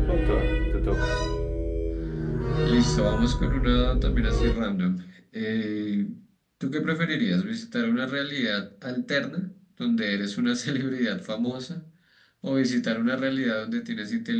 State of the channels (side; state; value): both; identical; correlation 1.00